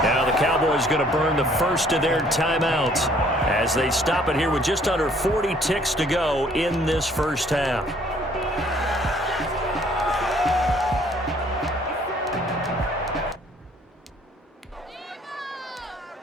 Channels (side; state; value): both; normal; correlation 0.60